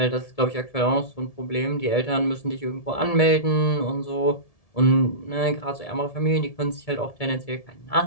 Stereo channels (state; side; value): late; right; 1.7 ms